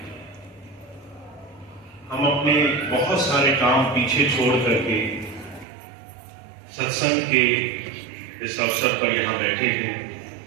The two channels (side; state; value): left; drops out; at 5.7 s